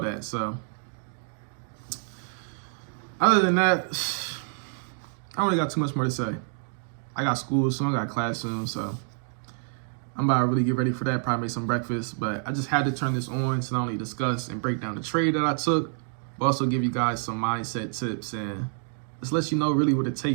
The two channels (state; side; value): silent; left; 60 dB below the other